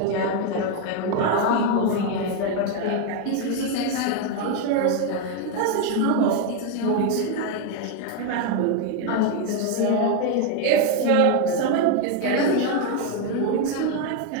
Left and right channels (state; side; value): different; both; correlation 0.01